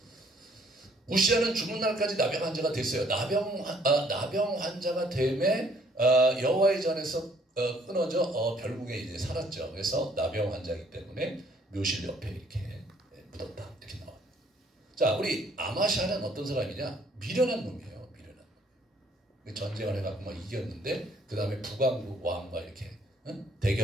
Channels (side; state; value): both; normal; correlation 0.63